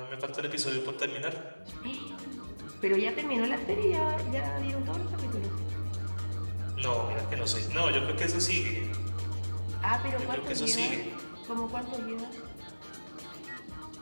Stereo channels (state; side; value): inverted; both; correlation -1.00